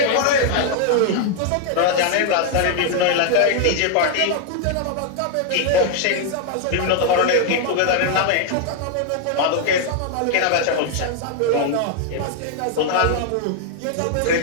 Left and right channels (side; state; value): both; different; correlation 0.00